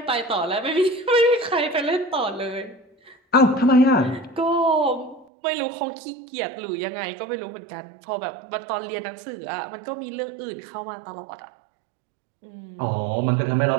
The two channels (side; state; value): left; drops out; at 5.2 s